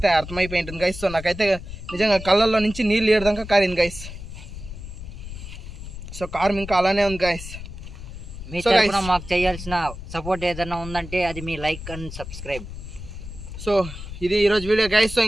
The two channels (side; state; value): left; noise; rumble, 11 dB below the sound